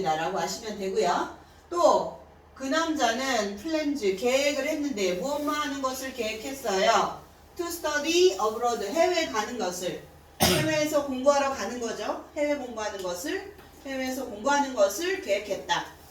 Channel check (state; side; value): identical; both; correlation 1.00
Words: 라고 아시면 되고요. 또 그 남자는 플랜즈 계획을 했는데 무엇만 하는 것을 계획했어요. To study abroad 해외에 가는 것을 해외에서 공부하러 가는 거죠. 해외 공부하는 것을 해외에서 공부하는 것을 계획했다.